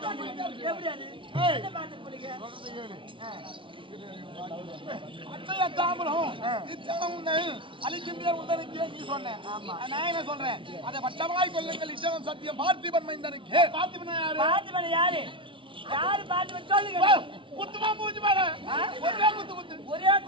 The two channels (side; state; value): left; late; 0.25 ms